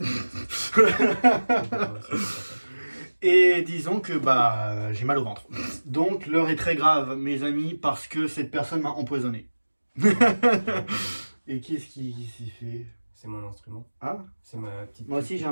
Et disons que j'ai mal au ventre. Donc l'heure est très grave, mes amis, parce que cette personne m'a empoisonné. Et qu'est-ce qui s'y fait? C'est mon instrument. Ah, C'est ma petite. moi aussi j'ai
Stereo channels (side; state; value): both; inverted; correlation -1.00